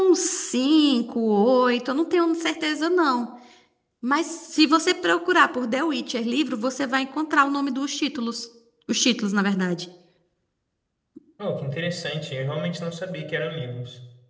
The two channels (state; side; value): identical; both; correlation 1.00